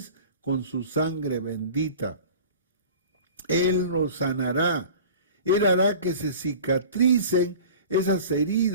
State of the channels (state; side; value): inverted; both; correlation -0.41